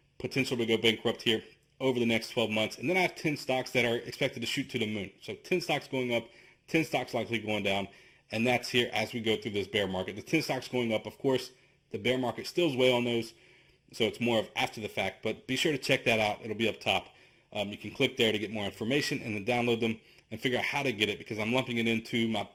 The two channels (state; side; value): identical; both; correlation 1.00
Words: potential to go bankrupt here over the next 12 months. And then I have 10 stocks that are expected to shoot to the moon. So 10 stocks going up, 10 stocks likely going down. And that's here as we go through this bear market. The 10 stocks going up, of course, the bear market stills way on those. So it's more of after the fact, but be sure to check that out. It'll be up top. You can click there to get more information and then download them and figure out how to get it because I'm lumping it into my